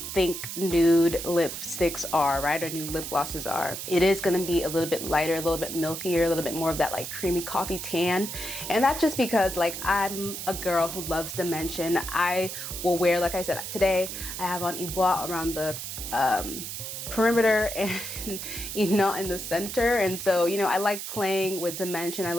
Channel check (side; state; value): right; noise; hiss, 7 dB below the sound